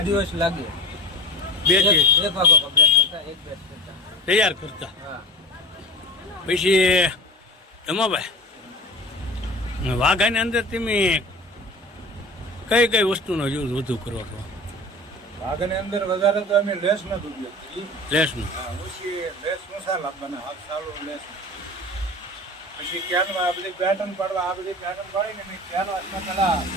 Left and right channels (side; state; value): both; normal; correlation 0.34